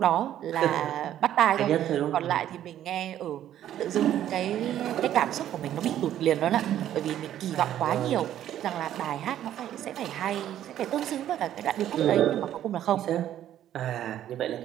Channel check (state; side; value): quieter; left; 11.5 dB